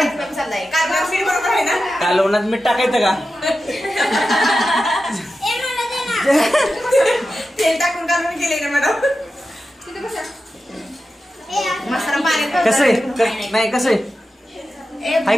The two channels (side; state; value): both; normal; correlation 0.92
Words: कालवणात मीठ टाकायचं का तेल टाकून कालवण केले ना मॅडम कसं आहे नाही कसं आहे